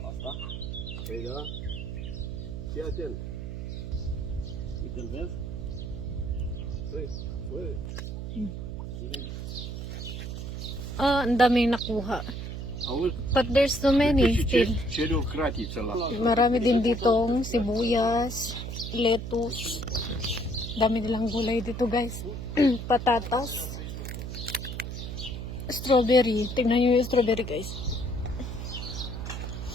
Asta? Păi da? Fii atent. Uite-l vezi? Păi, băi. Ang daming nakuha. Auzi? But there's so many still. Cere o cratiță la... Marami din ditong sibuyas, lettuce. Dami nilang gulay dito guys. Patatas. Strawberry. Tingnan nyo yung strawberry guys.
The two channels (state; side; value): noise; right; hum, 6 dB below the sound